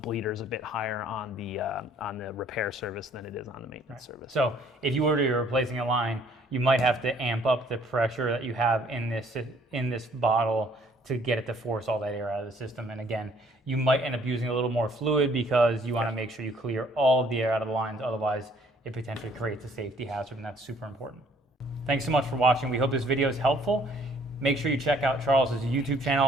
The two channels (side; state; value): both; normal; correlation 0.61